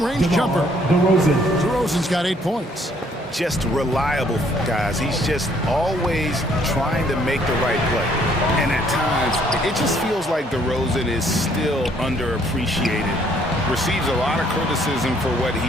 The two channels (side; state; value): both; normal; correlation 0.64